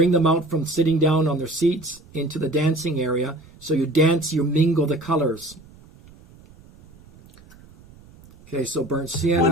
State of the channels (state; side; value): noise; right; rumble, 24 dB below the sound